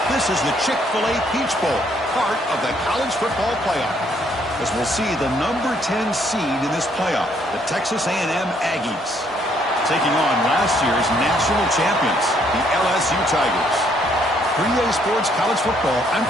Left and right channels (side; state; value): both; normal; correlation 0.68